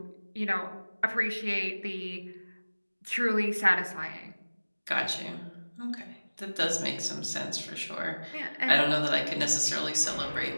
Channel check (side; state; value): both; inverted; correlation -1.00